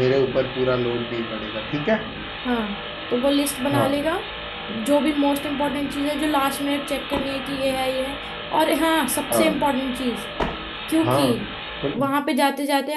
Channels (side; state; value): both; identical; correlation 1.00